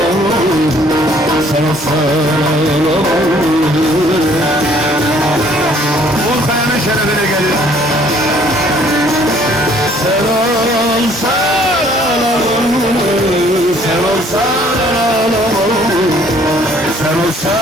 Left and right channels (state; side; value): normal; both; correlation 0.60